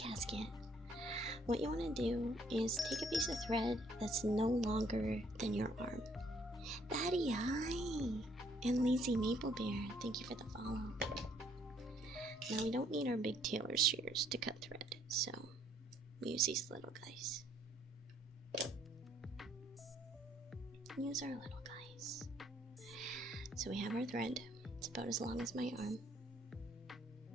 What you want to do is take a piece of thread that's no longer than your arm. Batty, hi! And Lazy Maple Bear, thank you for the follow. Now we don't need our big tailor shears to cut thread, so we use these little guys. Use our little guys. So we have our thread. It's about as long as my arm.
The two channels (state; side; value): normal; both; correlation 0.65